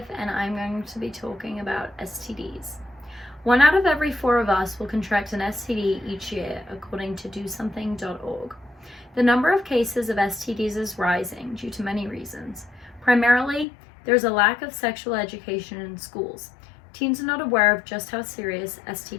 and I'm going to be talking about STDs. 1 out of every 4 of us will contract an STD each year, according to DoSomething.org. The number of cases of STDs is rising due to many reasons. Primarily, there's a lack of sexual education in schools. Teens are not aware of just how serious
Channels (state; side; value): drops out; right; at 13.7 s